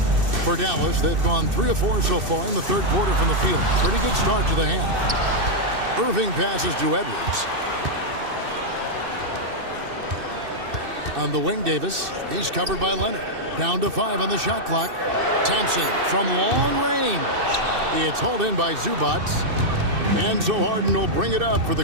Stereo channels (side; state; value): left; late; 2.6 ms